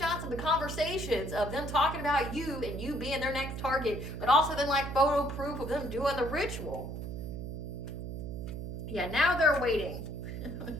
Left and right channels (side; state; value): right; noise; hum, 6 dB below the sound